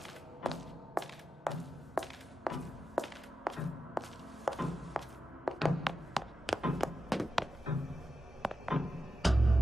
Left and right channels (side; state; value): both; normal; correlation 0.90